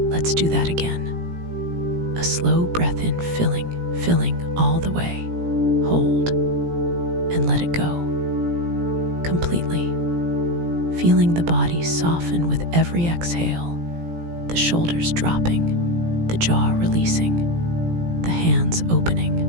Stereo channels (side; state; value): left; late; 17 ms